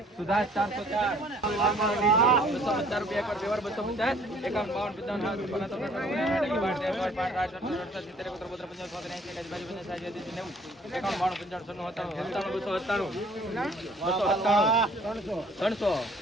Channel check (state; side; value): normal; both; correlation 0.57